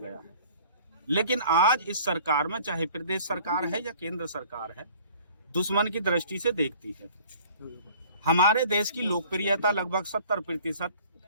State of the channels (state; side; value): inverted; both; correlation -0.52